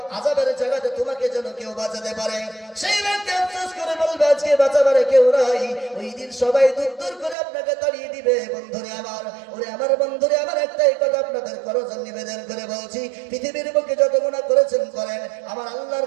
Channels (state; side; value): drops out; left; at 7.4 s